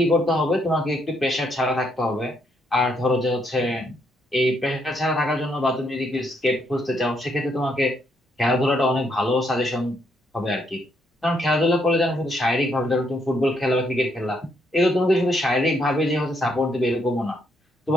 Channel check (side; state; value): both; normal; correlation 0.74